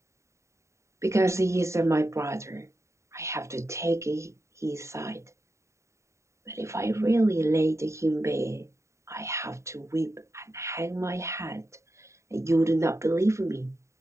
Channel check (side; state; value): left; late; 0.14 ms